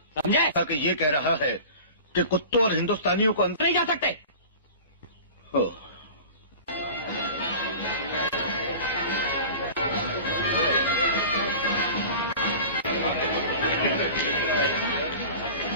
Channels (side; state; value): both; inverted; correlation -0.37